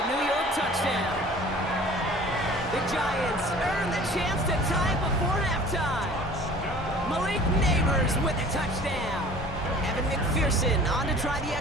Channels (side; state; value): both; normal; correlation 0.47